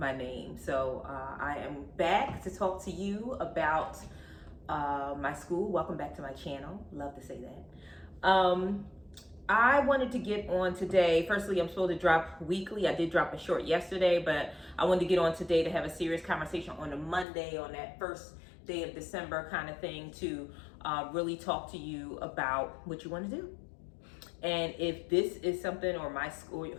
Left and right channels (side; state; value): right; drops out; at 17.2 s